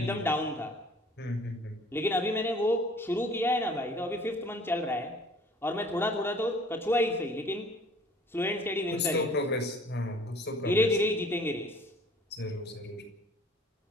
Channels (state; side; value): normal; both; correlation 0.52